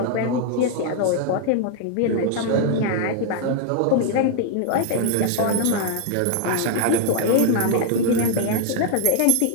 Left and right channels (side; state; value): both; different; correlation 0.00